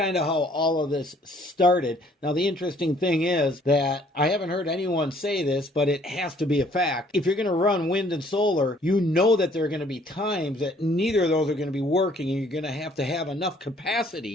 of how all of this started. Now the interesting thing is that I haven't heard anyone say this, but it has to be a fact. If you're going to run wind and solar, you know that there are going to be times that neither of those are going to be working, and you're going to have enough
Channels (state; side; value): normal; both; correlation 0.60